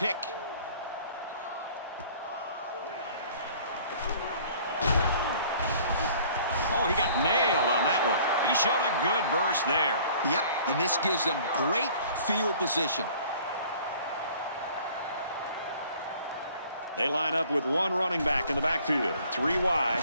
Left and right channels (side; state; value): both; inverted; correlation -0.53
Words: Oh, he got nailed on that one. He showed a good burst there. Yep, and this gives them great field position. They line up with one running back in the backfield. 3 wide.